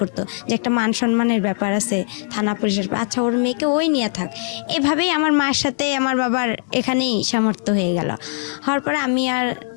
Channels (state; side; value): silent; right; digital silence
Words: করতো যে একটা মান সম্মানের ব্যাপার আছে থানা পুলিশের, আচ্ছা ওর মেয়েকে ওই নিয়ে থাক। এভাবেই আমার মার সাথে আমার বাবার এখানেই সামর্থ্য হয়ে গেল। হওয়ার পরে আমি আর